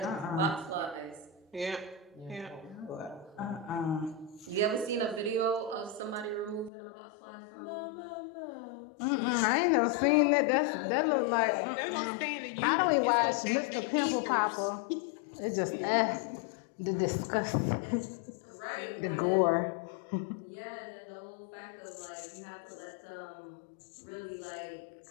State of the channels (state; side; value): drops out; right; at 6.7 s